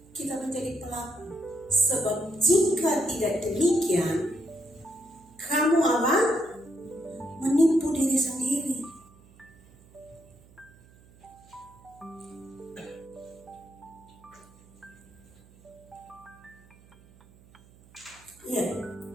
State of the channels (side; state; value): right; noise; hum, 26 dB below the sound